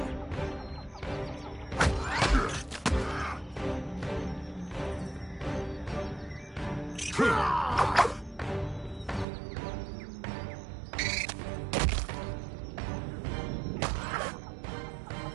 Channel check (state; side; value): drops out; left; at 9.2 s